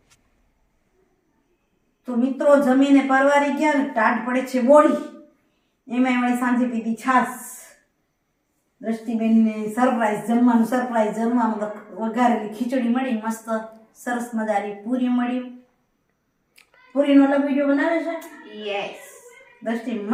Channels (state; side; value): identical; both; correlation 1.00